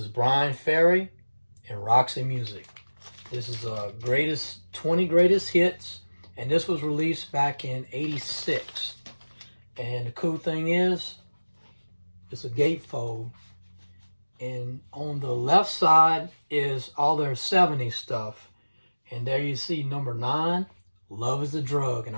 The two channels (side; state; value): both; inverted; correlation -1.00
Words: Bryan, Ferry, and Roxy Music. This is 20 greatest hits, and this was released back in '86. And the cool thing is, it's a gatefold, and on the left side is all their 70s stuff. And there you see number 9, Love is a Drug. And